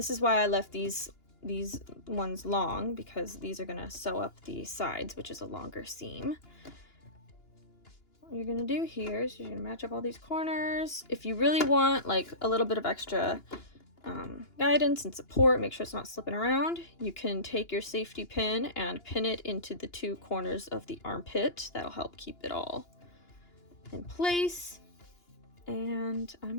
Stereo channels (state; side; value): late; right; 2.9 ms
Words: is why I left these ones long, because these are gonna sew up the sides, which is a longer seam. What you're gonna do here is you're gonna match up all these corners. If you really want like a little bit of extra guidance and support. Make sure it's not slipping around. You can take your safety pin and pin it into the two corners of the armpit. That'll help keep it all in place. And